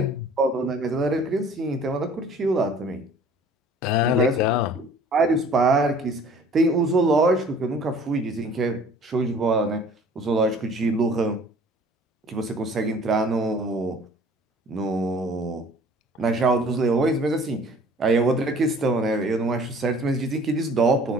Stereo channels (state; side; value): normal; both; correlation 0.51